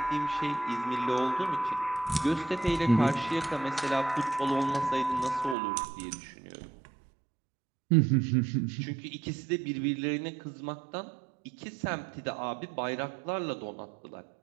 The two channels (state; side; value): drops out; left; at 5.6 s